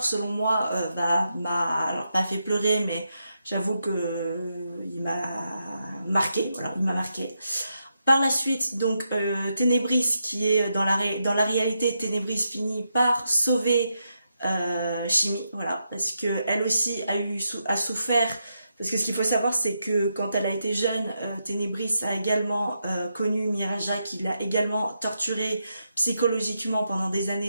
selon moi m'a fait pleurer, mais j'avoue que il m'a marqué, voilà, il m'a marqué. Par la suite, donc Ténébris, qui est dans la réalité, Ténébris finit par sauver Shimi, voilà, parce que elle aussi a souffert. Parce que ce qu'il faut savoir, c'est que quand elle a été jeune, Ténébris a également connu Miraja, qui l'a également torturée psychologiquement pendant des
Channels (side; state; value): both; inverted; correlation -0.84